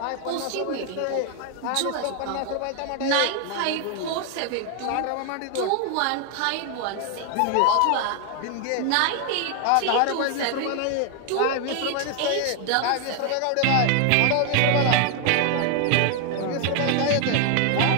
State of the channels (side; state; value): both; different; correlation 0.00